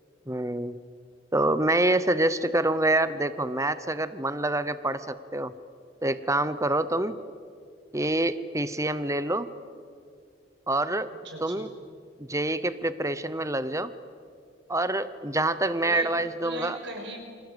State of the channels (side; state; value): both; normal; correlation 0.48